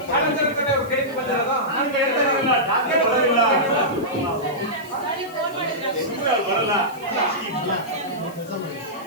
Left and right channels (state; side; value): noise; left; hiss, 22 dB below the sound